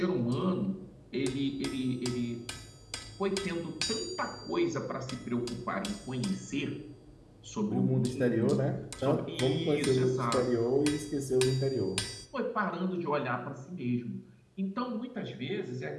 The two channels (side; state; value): both; identical; correlation 1.00